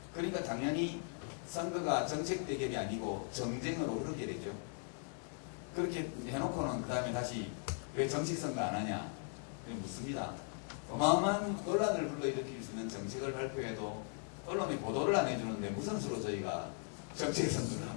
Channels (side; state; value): right; silent; 52 dB below the other